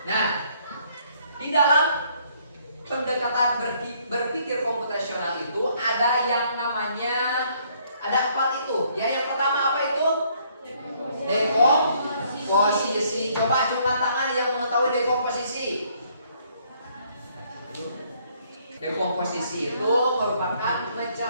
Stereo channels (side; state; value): both; inverted; correlation -0.66